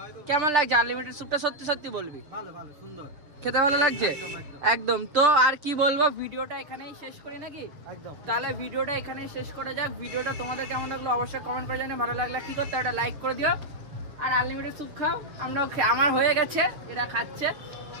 কেমন লাগছে আনলিমিটেড স্যুপটা? সত্যি সত্যি বলবি। ভালো ভালো, সুন্দর খেতে ভালো লাগছে একদম। তো আর কি বলবো, ভিডিওটা এখানেই শেষ করি নাকি? একদম। তাহলে ভিডিওটা এখানেই শেষ করা যাক। ভিডিওটা তোমাদের কেমন লাগলো অবশ্যই কমেন্ট করে জানিয়ে। ভালো লাগলে কি করতে, একটা লাইক করে দিও। আর আনলিমিটেড স্যুপ খাও, আমরাও আমার হয়ে গেছে, এরা খাচ্ছে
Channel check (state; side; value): late; left; 6.9 ms